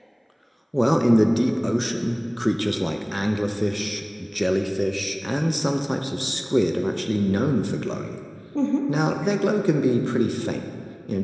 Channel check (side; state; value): both; identical; correlation 1.00